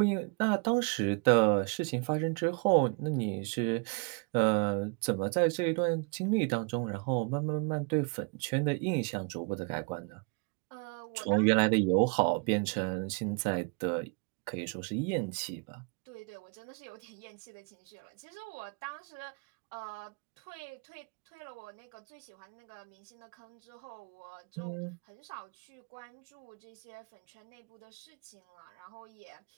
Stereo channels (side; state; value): left; quieter; 35.0 dB